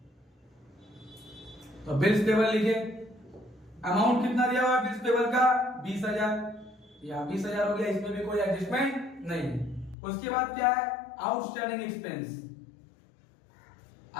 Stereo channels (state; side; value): drops out; right; at 10.0 s